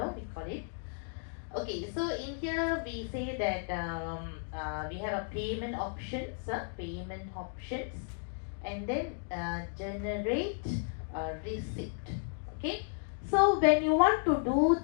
call it. Okay, so in here we say that we have a payment options, and then generate receipt. Okay, so when you want to do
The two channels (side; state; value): right; silent; digital silence